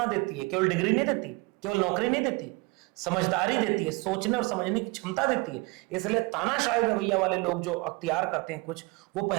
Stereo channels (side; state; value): left; quieter; 25.5 dB